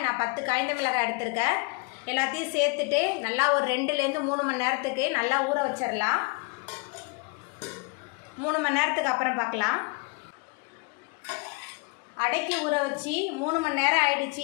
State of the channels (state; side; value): quieter; right; 30.6 dB